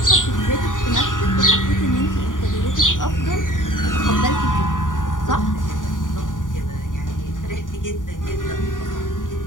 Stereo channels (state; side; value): late; right; 0.88 ms